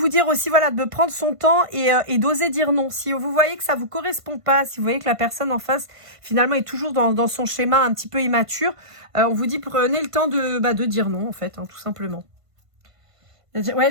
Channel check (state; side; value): late; left; 1.5 ms